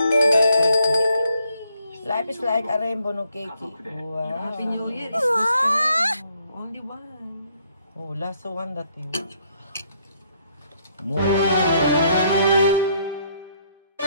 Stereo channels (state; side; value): inverted; both; correlation -0.70